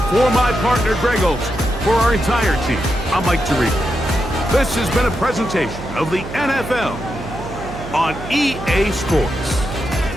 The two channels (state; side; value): noise; right; hum, 11 dB below the sound